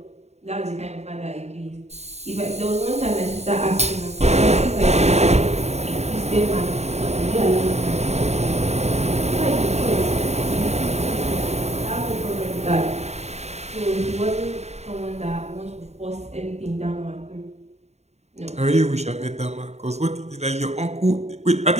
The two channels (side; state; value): left; late; 0.32 ms